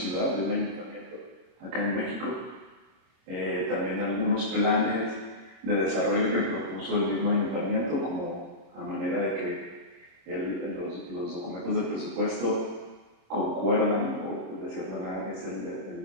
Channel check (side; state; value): left; late; 26 ms